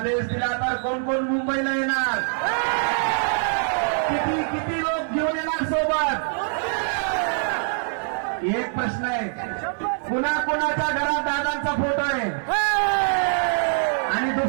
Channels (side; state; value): left; silent; 63 dB below the other